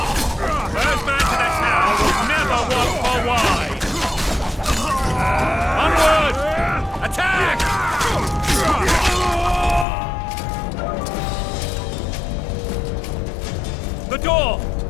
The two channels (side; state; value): right; drops out; at 9.9 s